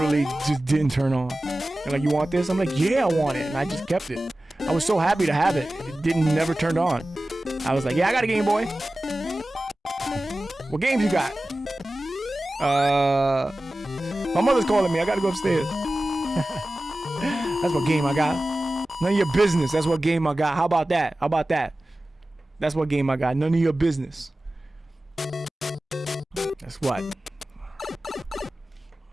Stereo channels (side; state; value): both; normal; correlation 0.96